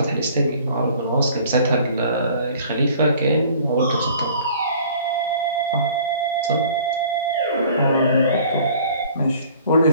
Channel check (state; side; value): inverted; both; correlation -0.52